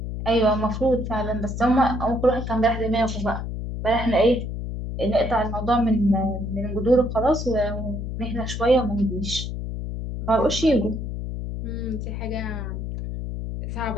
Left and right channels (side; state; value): left; noise; hum, 5 dB below the sound